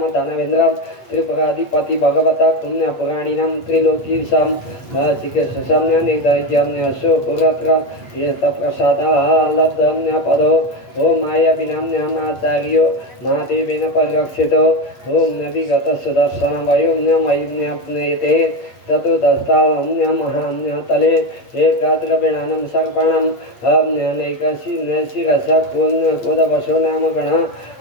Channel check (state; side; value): late; right; 8.7 ms